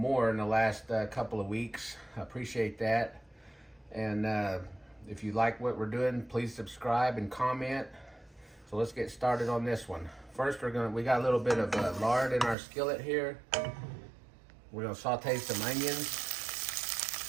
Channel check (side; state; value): left; drops out; at 12.6 s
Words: in the last couple of weeks. I appreciate that. And if you like what we're doing, please subscribe and comment. So let's get started on this one. First, we got a little bit of lard in our skillet here. We're going to saute some onions.